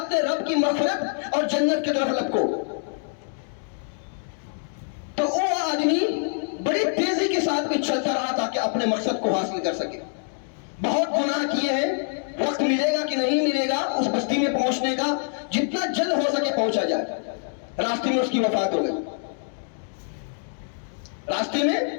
رب کی مغفرت اور جنت کی طرف لپکو۔ تو وہ آدمی بڑی تیزی کے ساتھ میں چلتا رہا تاکہ اپنے مقصد کو حاصل کر سکے۔ بہت گناہ کیے ہیں، وقت ملے گا کہ نہیں ملے گا اس بستی میں پہنچنے کا، جتنا جلد ہو سکے پہنچا جائے۔ راستے میں اس کی وفات ہو گئی، راستے میں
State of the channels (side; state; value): right; silent; 62 dB below the other